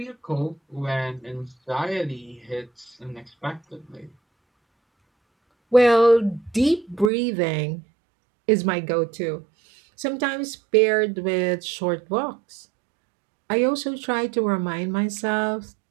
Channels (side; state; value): left; drops out; at 7.1 s